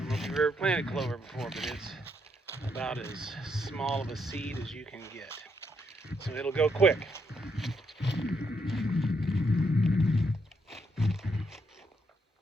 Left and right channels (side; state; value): both; normal; correlation 0.76